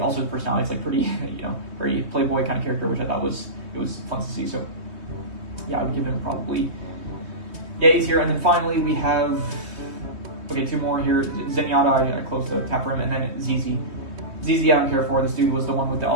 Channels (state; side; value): late; left; 3.2 ms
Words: his personality is like pretty, very playboy kind of character, which I thought was fun to see. So yeah, I would give him probably A tier. And then finally we have two more here. Zenyatta, I closed the tab for him, and then ZZ. ZZ I don't care for. This dude was the one with the